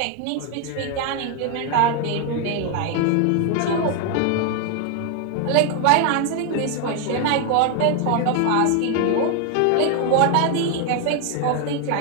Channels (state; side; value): different; both; correlation 0.01